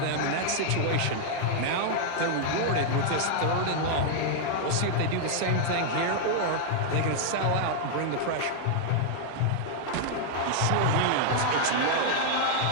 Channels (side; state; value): both; different; correlation -0.01